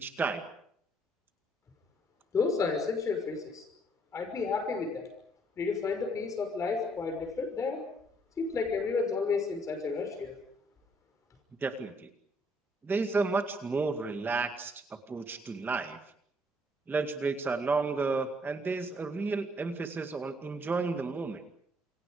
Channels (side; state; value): both; normal; correlation 0.67